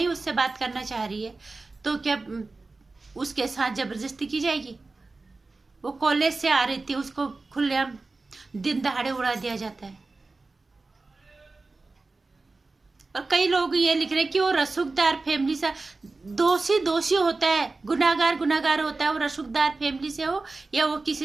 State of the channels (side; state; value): left; quieter; 3.6 dB